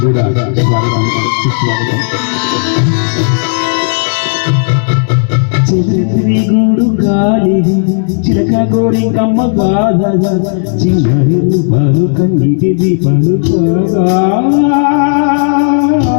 కూడా స్వాగతం సుస్వాగతం. చెరుకుని గూడు కాలిగా చిలక కోడి కమ్మ బాధగా చిన్నడి రూపాలు కన్నీటి దీపాలు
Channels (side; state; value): right; silent; digital silence